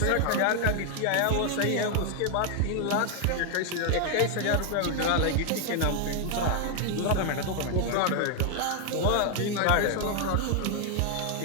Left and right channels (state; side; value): different; both; correlation 0.00